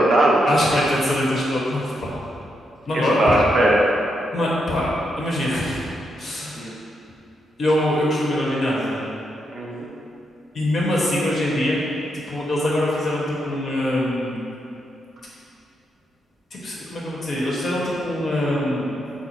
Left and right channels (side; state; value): both; normal; correlation 0.81